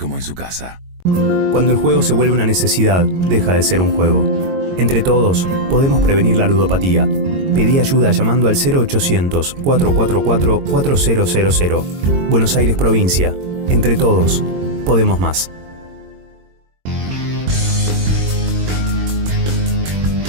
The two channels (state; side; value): late; left; 22 ms